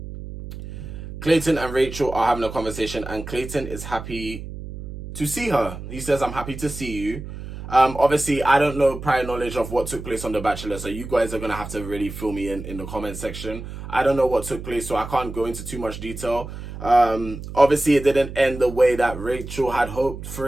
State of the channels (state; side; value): noise; right; hum, 10 dB below the sound